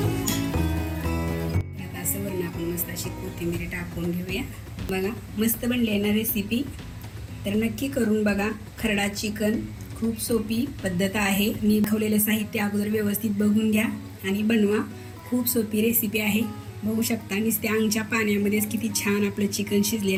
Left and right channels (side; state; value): both; identical; correlation 1.00